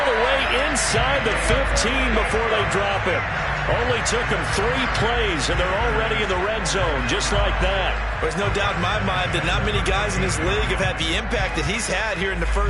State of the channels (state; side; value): identical; both; correlation 1.00